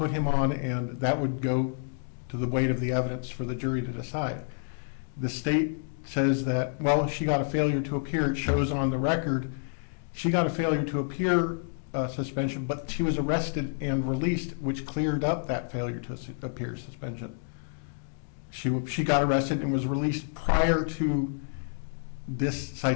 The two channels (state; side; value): silent; right; digital silence